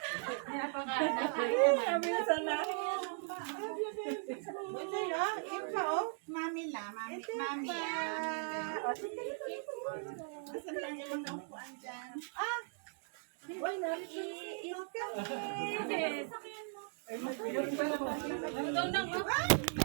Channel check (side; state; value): left; silent; 52 dB below the other